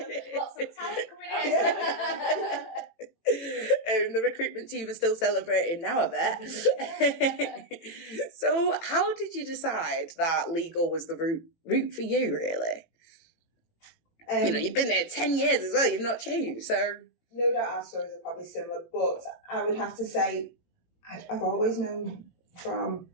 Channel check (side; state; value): right; late; 18 ms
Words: Lots of talent coming in. The recruitment team are still celebrating now, I bet. So how did you decide that legal was the route for you, really? You've been there 10 years as well, you've not changed, so... No doubt our stories are probably similar, but I would have to say I've always known from